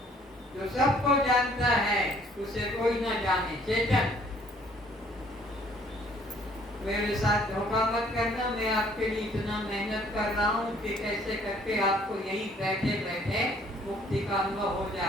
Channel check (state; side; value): normal; both; correlation 0.60